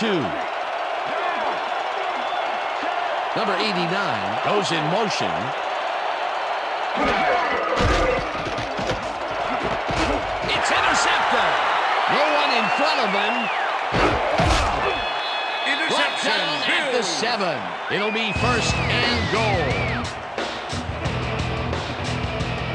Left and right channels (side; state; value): both; identical; correlation 1.00